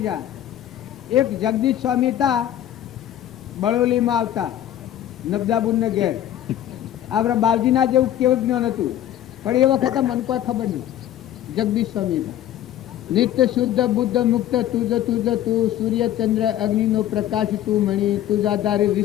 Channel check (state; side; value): quieter; right; 11.9 dB